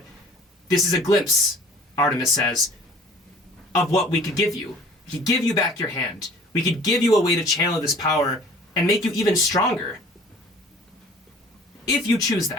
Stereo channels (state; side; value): normal; both; correlation 0.50